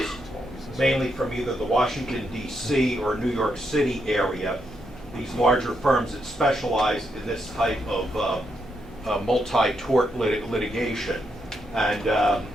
mainly from either the Washington, D.C. or New York City area. These larger firms that specialize in this type of multi-tort litigation. And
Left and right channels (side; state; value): left; noise; hum, 21 dB below the sound